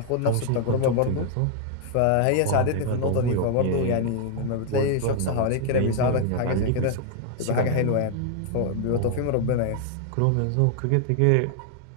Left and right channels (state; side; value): different; both; correlation 0.00